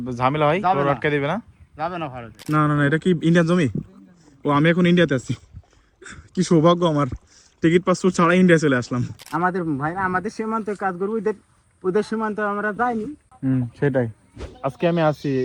ঝামেলা হয় যাবে গরু না। আটকে দিবে না? যাবে না ভারতে। না না না, এটা কি ইন্ডিয়ান জমি? ও, আমি এখন ইন্ডিয়াতে আছি। কি সৌভাগ্য আমার, টিকিট পাসপোর্ট ছাড়া ইন্ডিয়া চলে আসলাম। আমাদের ভাইরা আমাদের সীমান্তে কাজ করবো, ওদের ওদের সীমান্তে আমরা যাইনি। সেটাই। আজকে আমি আছি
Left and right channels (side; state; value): both; identical; correlation 1.00